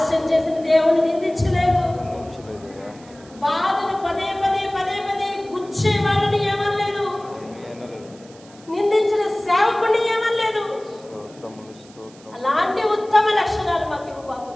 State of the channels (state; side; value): noise; right; hiss, 25 dB below the sound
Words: చేసిన దేవుడిని నిందించలేదు, బాధను పదే గుచ్చే వాళ్ళని ఏమనలేదు, నిందించిన సేవకుని ఏమనలేదు. అలాంటి ఉత్తమ లక్షణాలు మాకు ఇవ్వు బాబు.